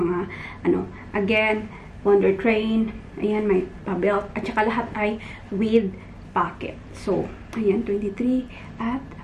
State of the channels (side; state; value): both; identical; correlation 1.00